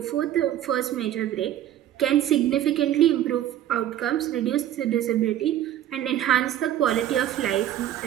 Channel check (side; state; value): left; quieter; 11.9 dB